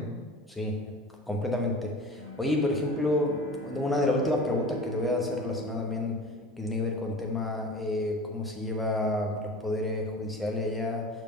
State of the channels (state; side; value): normal; both; correlation 0.37